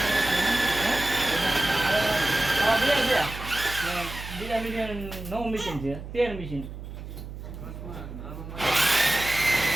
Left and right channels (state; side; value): noise; right; hum, 11 dB below the sound